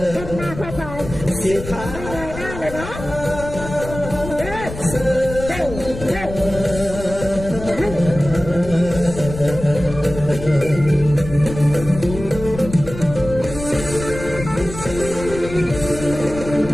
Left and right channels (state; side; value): noise; left; rumble, 10 dB below the sound